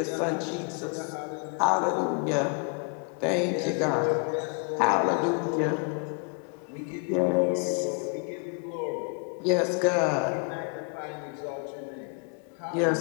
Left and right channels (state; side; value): quieter; right; 38.8 dB